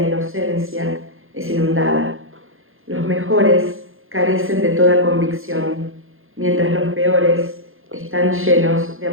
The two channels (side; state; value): left; late; 0.60 ms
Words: inocencia es inundada. Los mejores carecen de toda convicción, mientras los peores están llenos de